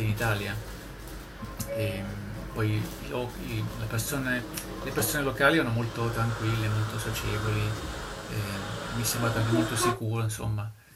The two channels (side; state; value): both; identical; correlation 1.00